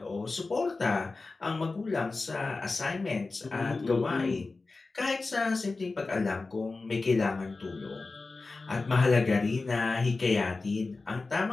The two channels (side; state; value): right; quieter; 3.7 dB